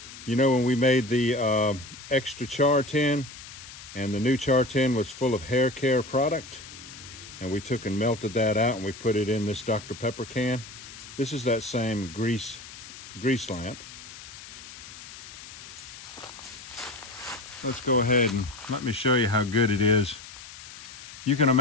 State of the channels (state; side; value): noise; left; hiss, 15 dB below the sound